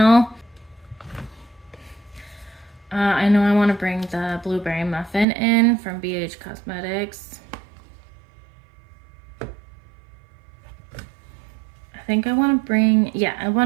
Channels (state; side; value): drops out; left; at 5.2 s